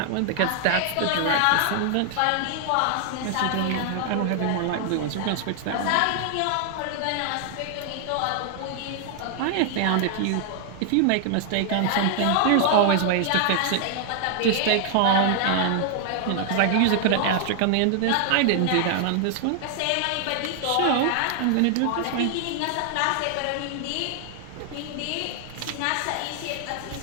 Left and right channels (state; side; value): different; both; correlation 0.00